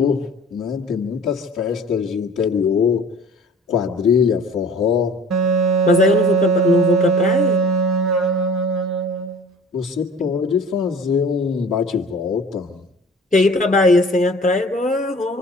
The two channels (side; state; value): both; normal; correlation 0.45